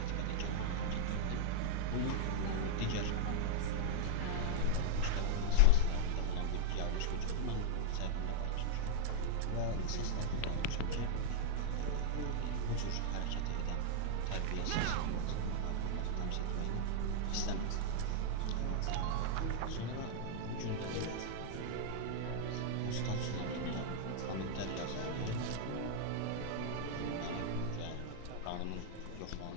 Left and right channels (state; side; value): different; both; correlation -0.01